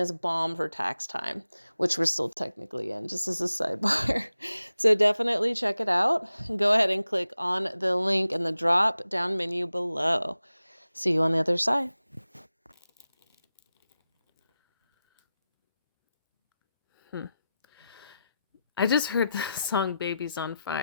bomb for tax time, which we're still technically in, just as a sidebar. So definitely check it out. Go ahead and click on the link in the drop down menu below. See you on the other side. I just heard the song Baby's on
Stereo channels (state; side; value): inverted; both; correlation -0.92